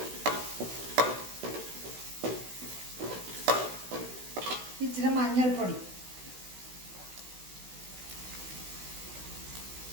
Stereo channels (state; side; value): late; left; 16 ms